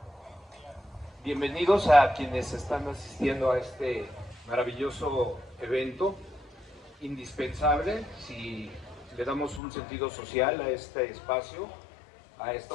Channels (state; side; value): drops out; right; at 9.6 s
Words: Bienvenidos a quienes están asistiendo a este maravilloso evento, indispensable si le damos un sentido social a este espacio, a esta